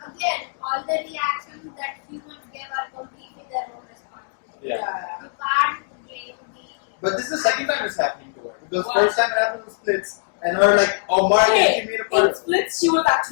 again, all the reactions that humans give are completely their own responsibility. Yeah. You can't blame the. But this is the second time it's happening to her. Because What? first time it happened in Splits, and her like, oh Mark, Okay, she made a in part. splits, she was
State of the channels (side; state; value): right; silent; digital silence